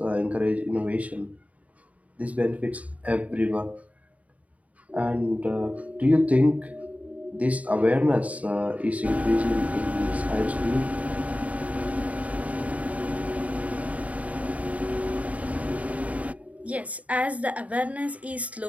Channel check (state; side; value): late; left; 0.069 ms